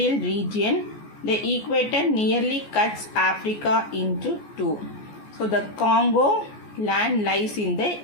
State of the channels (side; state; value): right; late; 14 ms